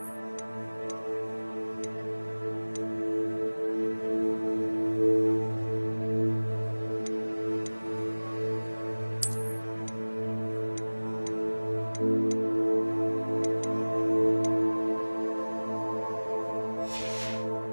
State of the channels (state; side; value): inverted; both; correlation -1.00